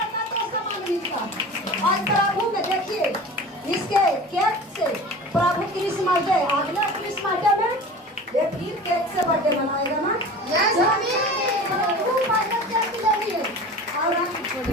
आज प्रभु में देखिए इसके केक से प्रभु क्रिसमस डे, अगला क्रिसमस डे में ये फिर केक से बर्थडे मनाएगा ना। प्रभु बर्थडे केक लेंगे और हम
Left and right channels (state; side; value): normal; both; correlation 0.36